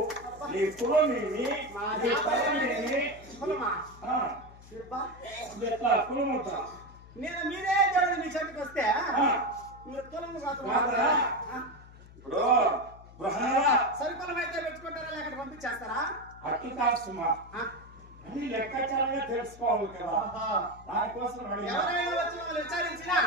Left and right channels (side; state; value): left; noise; hum, 20 dB below the sound